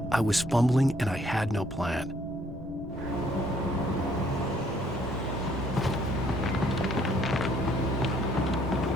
I was fumbling and I had no plan.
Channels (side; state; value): both; normal; correlation 0.65